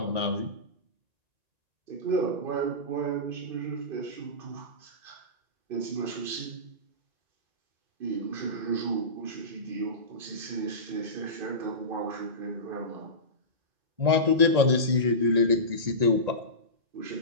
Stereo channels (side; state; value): left; late; 1.8 ms